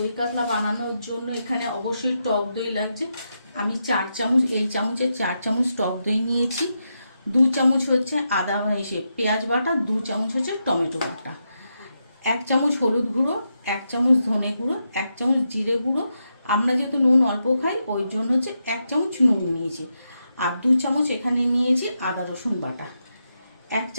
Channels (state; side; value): inverted; both; correlation -0.85